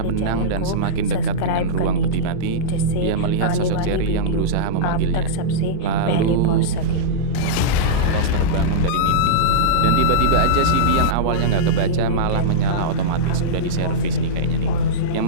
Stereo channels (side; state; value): both; different; correlation -0.05